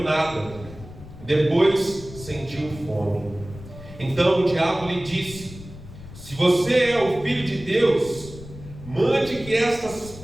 Depois sentiu fome. Então o diabo lhe disse: se você é o Filho de Deus, mande que estas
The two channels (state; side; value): noise; left; rumble, 16 dB below the sound